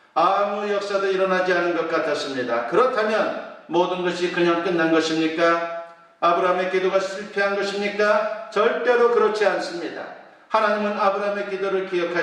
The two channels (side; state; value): both; identical; correlation 1.00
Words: 아무 역사도 일어나지 않은 것 같았습니다. 그렇다면 모든 것이 그냥 끝난 것입니까? 아브라함의 기도가 실패한 것입니까? 절대로 그렇지 않습니다. 하나님은 아브라함의 기도를